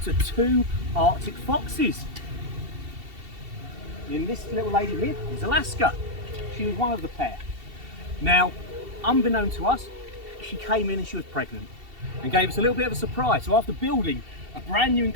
to 2 Arctic foxes. And this little lady here is Alaska. She was one of the pair. Now, unbeknown to us, she came in and she was pregnant and gave us a little bit of a surprise. So after building a brand new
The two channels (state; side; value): late; left; 2.7 ms